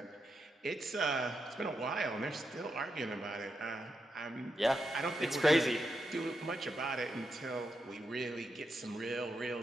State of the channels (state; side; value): normal; both; correlation 0.85